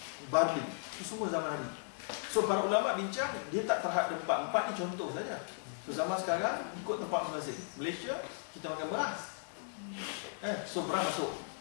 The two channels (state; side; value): silent; right; digital silence